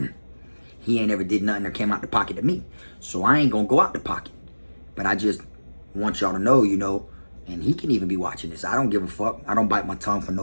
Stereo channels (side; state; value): both; inverted; correlation -1.00